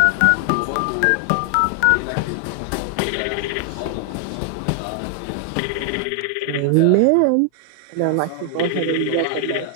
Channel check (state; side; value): different; both; correlation 0.00